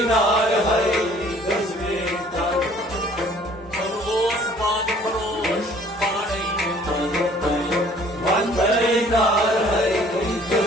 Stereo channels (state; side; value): normal; both; correlation 0.55